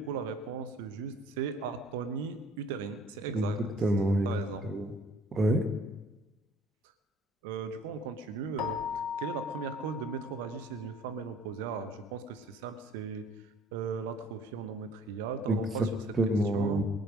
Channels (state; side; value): normal; both; correlation 0.55